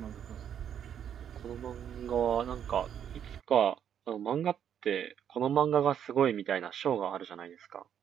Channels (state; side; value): quieter; left; 9.0 dB